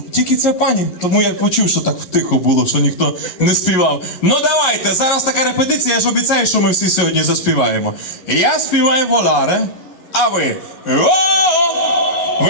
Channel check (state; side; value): late; right; 11 ms